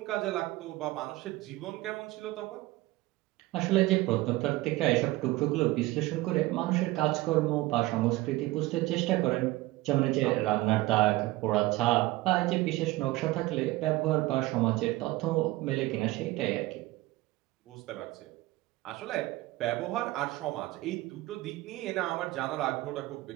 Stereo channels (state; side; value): quieter; left; 18.8 dB